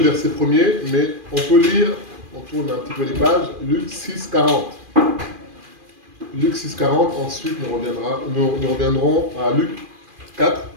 verset 1er, mais on peut lire, on tourne un petit peu les pages, Luc 6, 40. Luc 6, 40, ensuite nous reviendrons à Luc 4.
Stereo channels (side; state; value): left; late; 2.4 ms